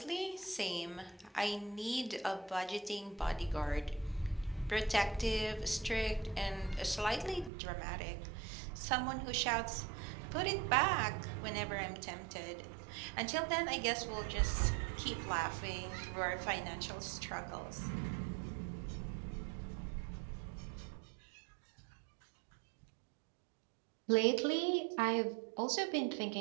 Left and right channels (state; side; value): drops out; left; at 7.5 s